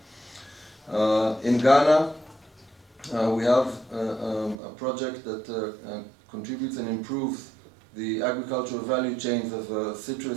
In Ghana, we have a project that contributes and improves the agricultural value chains of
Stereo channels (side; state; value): left; drops out; at 4.5 s